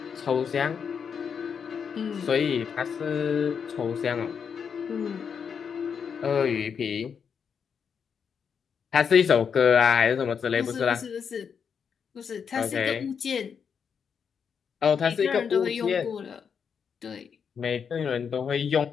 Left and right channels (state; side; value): quieter; right; 6.8 dB